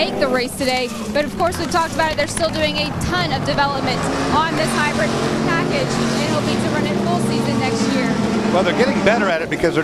the race today. But of course, we've talked about it. They're still doing a ton of development on this hybrid package and hoping to run it full season next year. Well, they're getting better at it because they're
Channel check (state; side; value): identical; both; correlation 1.00